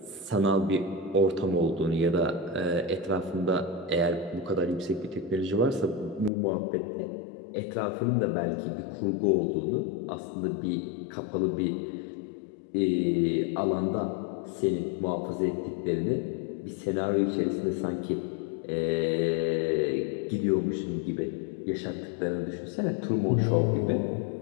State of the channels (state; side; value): drops out; right; at 6.3 s